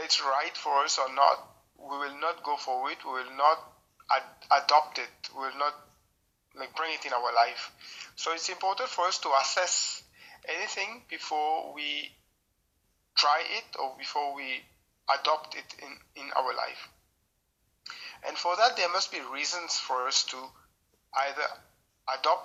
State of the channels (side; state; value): both; identical; correlation 1.00